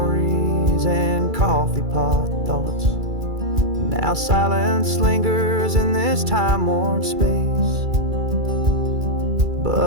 and coffee pot thoughts. Now silence lingers in this time-worn space,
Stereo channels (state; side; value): late; left; 2.3 ms